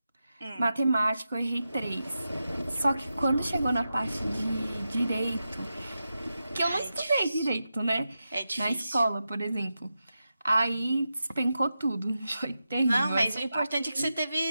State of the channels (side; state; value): both; inverted; correlation -0.90